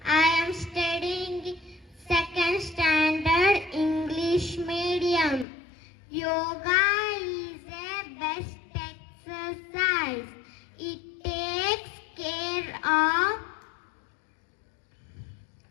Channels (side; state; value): right; drops out; at 5.5 s